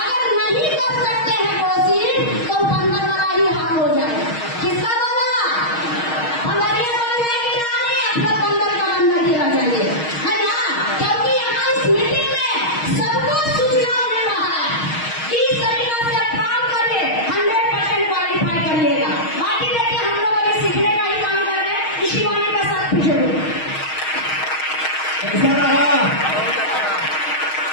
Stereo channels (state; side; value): late; right; 6.4 ms